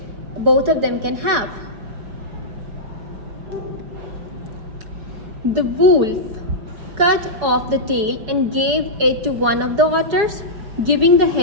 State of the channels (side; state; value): left; late; 5.6 ms